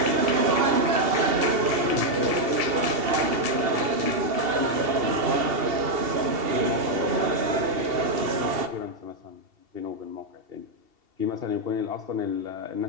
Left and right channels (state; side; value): late; left; 2.7 ms